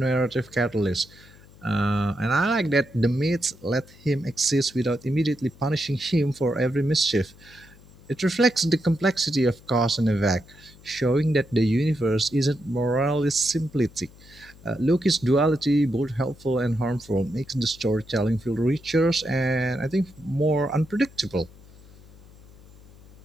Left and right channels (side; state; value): left; noise; hum, 23 dB below the sound